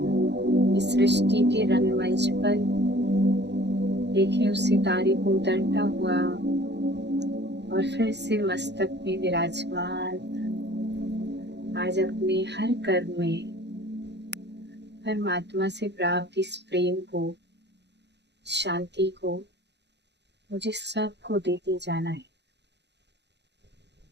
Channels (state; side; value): late; left; 0.50 ms